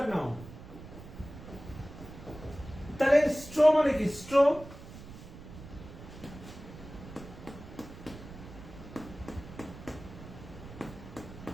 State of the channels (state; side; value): noise; right; rumble, 15 dB below the sound